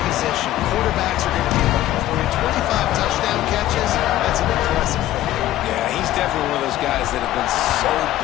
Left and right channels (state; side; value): quieter; right; 14.1 dB